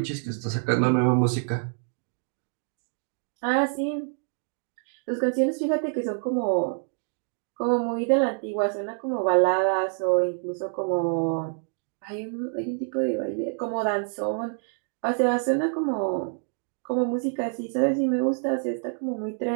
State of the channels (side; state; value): left; silent; 57 dB below the other